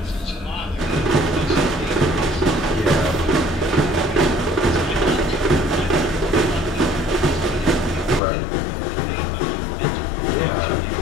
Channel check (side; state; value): right; drops out; at 8.2 s